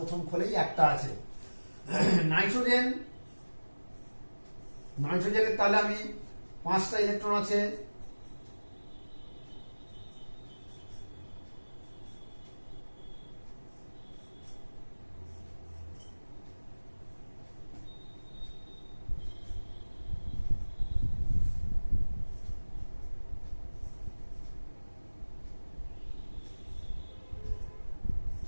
খোলেই একটা আছে। নাইট্রোজেনের তাহলে আমি 5টা ইলেকট্রন আছে।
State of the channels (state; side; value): inverted; both; correlation -1.00